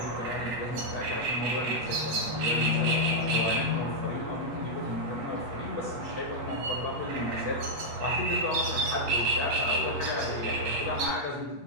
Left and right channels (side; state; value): left; late; 8.3 ms